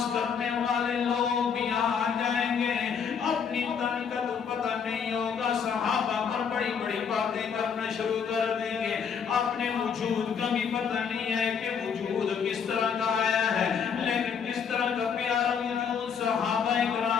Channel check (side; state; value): right; quieter; 6.8 dB